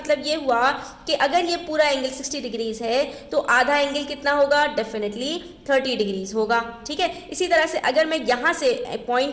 ये हुआ कि अगर ये पूरा एंगल 60 डिग्रीज है तो आधा एंगल कितना होगा, डेफिनेटली 30 डिग्रीज होगा। ठीक है, इसी तरह से अगर मैं यहाँ से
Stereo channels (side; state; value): both; identical; correlation 1.00